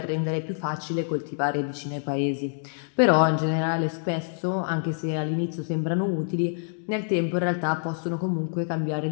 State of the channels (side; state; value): right; silent; digital silence